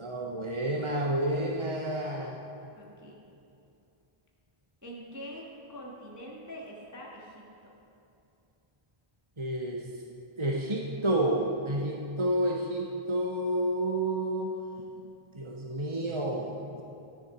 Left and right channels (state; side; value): late; left; 1.3 ms